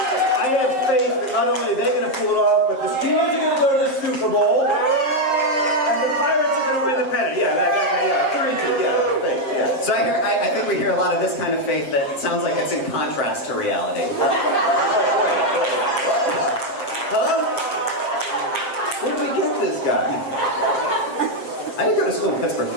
I have faith that not only are they going to pull it off, but the Steelers are going to go to the Super Bowl, and the Pirates are going to win the pennant. Faith, yeah. So I think we hear a lot of this kind of faith that sounds like it's in contrast to reality. Huh? Where did we get this guy? I did go to school in Pittsburgh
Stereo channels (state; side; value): late; right; 7.5 ms